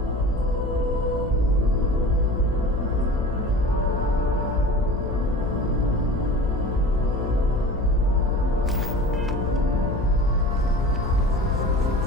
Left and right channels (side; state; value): left; noise; hum, 4 dB below the sound